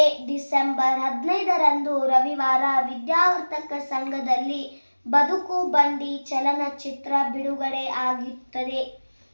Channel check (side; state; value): both; inverted; correlation -1.00